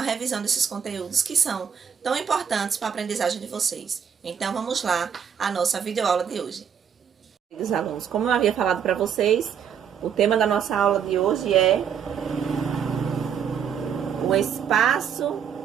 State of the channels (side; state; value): left; quieter; 7.7 dB